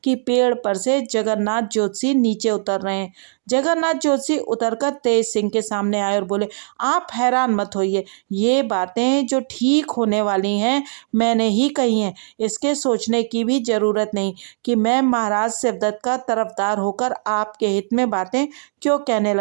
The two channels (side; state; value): left; silent; digital silence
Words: कि पेड़ पर से जगन्नाथ जोशी नीचे उतर रहे हैं। जगन्नाथ जोशी उतरकर तेज सिंह के सामने आए और बोले, आप हैरान मत होइए, ये बातें जो ठीक होने वाली हैं मैंने ही कही हैं। इसके सोचने की भी जरूरत नहीं कि मैं महाराज शिवदत्त का तरफदार होकर आपके हित में बातें क्यों कहने